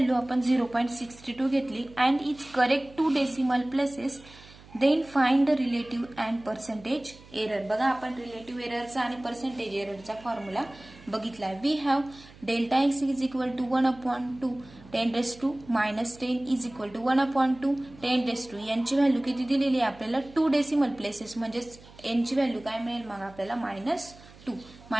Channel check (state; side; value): noise; right; hum, 22 dB below the sound